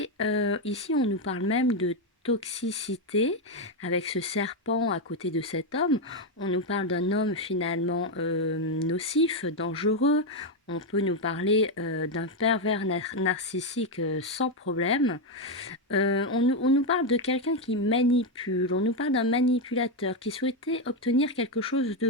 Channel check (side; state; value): both; normal; correlation 0.05